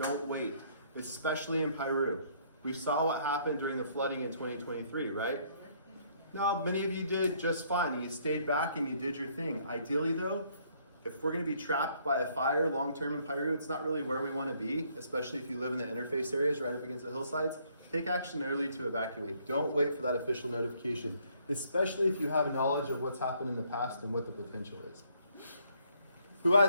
wait, especially in Piru. We saw what happened during the flooding in 2023, right? Now, many of you did just fine, and you stayed back and you did your thing. Ideally though, if we're gonna be trapped by a fire long-term in Piru, it's not really where we wanna be, especially if you live in the interface areas right up against the hillsides. Take action early to evacuate. Don't wait for that official notification, especially if you have knowledge of what's happened in the past and what the potential is. Who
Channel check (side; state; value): both; inverted; correlation -0.66